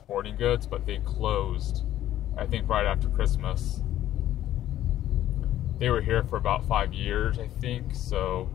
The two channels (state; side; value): quieter; right; 12.8 dB